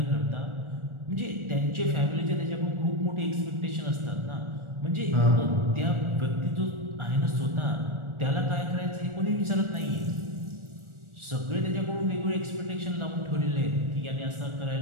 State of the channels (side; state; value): left; late; 1.4 ms